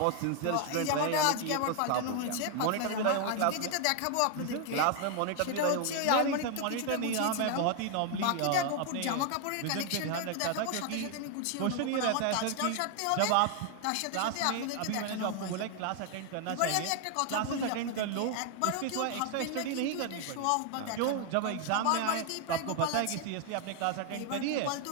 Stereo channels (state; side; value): different; both; correlation 0.00